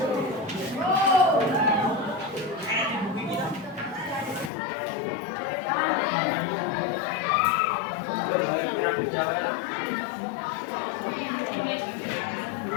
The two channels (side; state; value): right; drops out; at 4.5 s